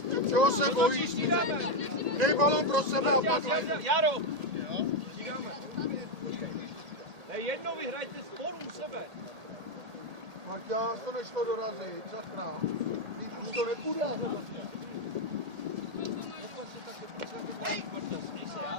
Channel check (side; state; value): left; late; 1.8 ms